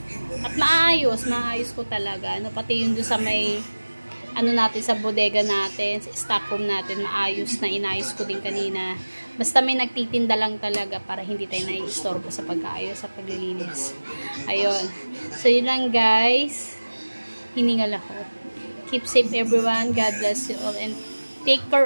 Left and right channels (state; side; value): inverted; both; correlation -1.00